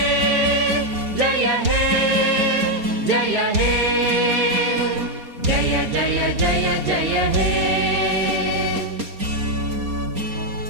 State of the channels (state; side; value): late; left; 4.2 ms